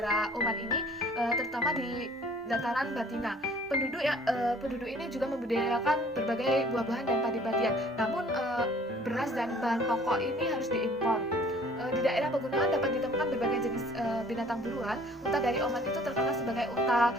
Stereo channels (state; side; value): normal; both; correlation 0.54